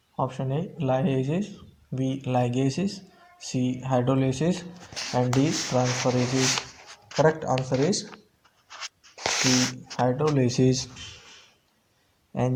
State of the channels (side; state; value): both; identical; correlation 1.00